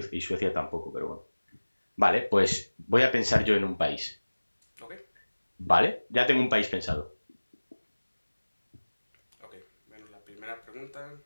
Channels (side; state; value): both; inverted; correlation -1.00